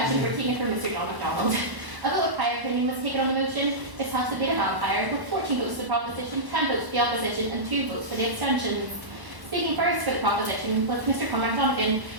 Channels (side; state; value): left; late; 1.1 ms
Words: were taken from Mr. John MacDonald. A vote of prior opinion was taken on the motion. This has to be a vampire, with 14 votes for the proposition, 10 votes for the opposition, and 2 votes for the abstentions. Speaking first for the proposition was Mr. Cormac Donegan.